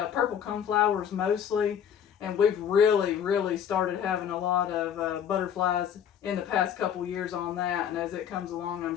Purple coneflowers mostly, and we've really started having a lot of butterflies in the past couple years on that, and as it comes along, I'm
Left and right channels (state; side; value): quieter; right; 8.7 dB